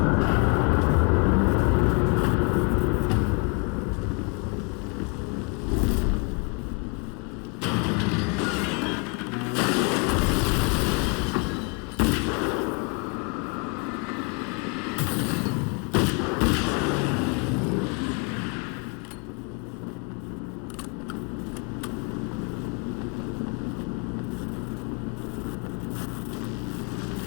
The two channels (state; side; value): quieter; right; 34.0 dB